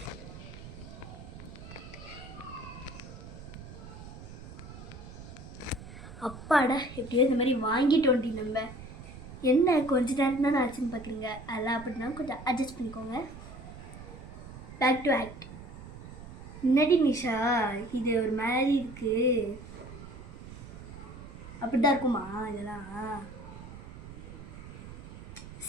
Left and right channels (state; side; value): noise; right; rumble, 14 dB below the sound